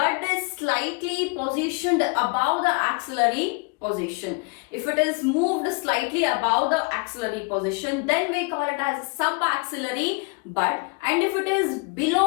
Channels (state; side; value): quieter; right; 32.5 dB